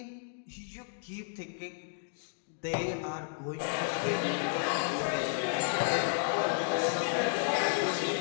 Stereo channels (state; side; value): silent; right; digital silence